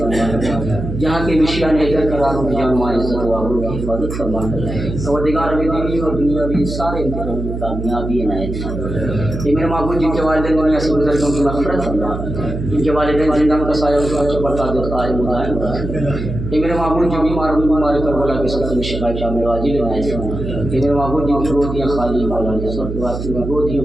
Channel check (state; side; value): noise; right; hum, 6 dB below the sound